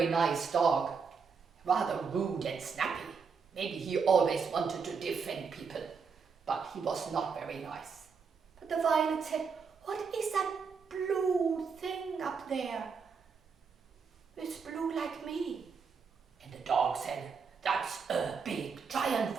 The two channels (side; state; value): left; quieter; 5.6 dB